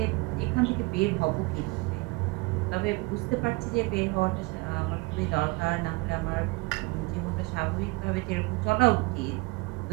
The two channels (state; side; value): quieter; left; 25.6 dB